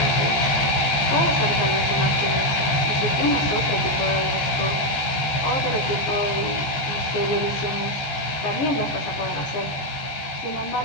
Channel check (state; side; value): late; right; 14 ms